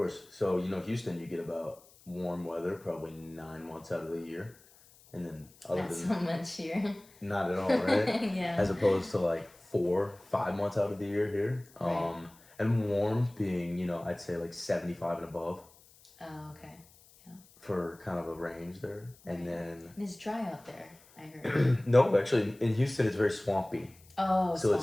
So, Houston, you get about warm weather probably 9 months out of the year. And then Not so much here. not at all, right? Yeah. As opposed to like 4, 5 months out of the year here. Right. And warm being, I'd say like 75 and above Oh, okay. for kind of a range there. And Right. then And it's dry out there, I heard. no, actually, in Houston, it's very swampy. Oh, So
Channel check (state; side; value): noise; left; hiss, 26 dB below the sound